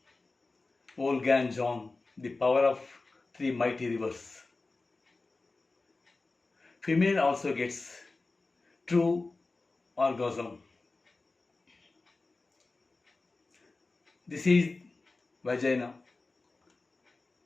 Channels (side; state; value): right; quieter; 3.5 dB